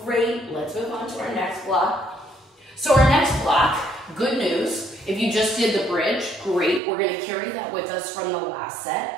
great. Let's move on to our next block. So our next block, good news, if you just did the bridge, great. We're gonna carry that with us from the last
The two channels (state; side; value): drops out; left; at 6.8 s